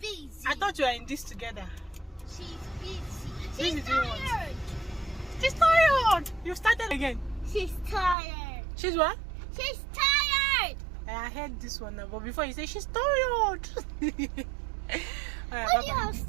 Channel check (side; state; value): left; drops out; at 8.2 s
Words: I thought you were in this together. She's busy. She's tired. She's tired. You started again. She's tired. She's what? She's tired. I heard this one now, but before you say she's tired. Why do you have